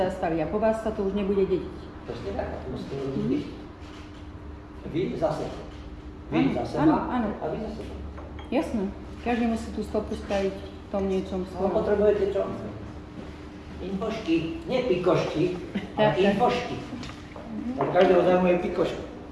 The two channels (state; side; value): identical; both; correlation 1.00